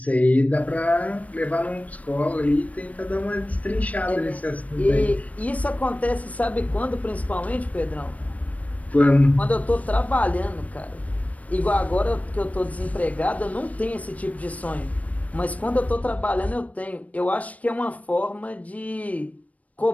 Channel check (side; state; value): right; late; 0.069 ms